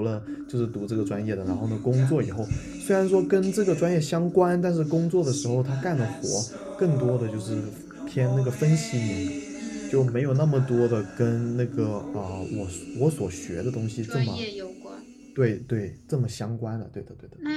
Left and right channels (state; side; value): identical; both; correlation 1.00